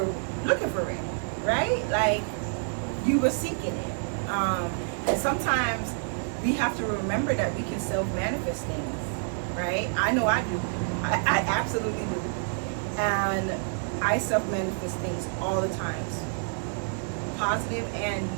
looking for it, right? Like, you were seeking it. And sometimes we have to remember that we can self-manifest things, right? I know I do. I absolutely do. And I self-manifest things all the times, positive and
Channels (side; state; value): left; silent; 59 dB below the other